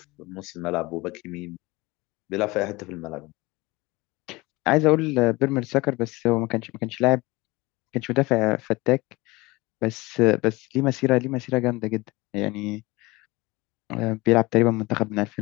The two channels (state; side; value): quieter; right; 22.3 dB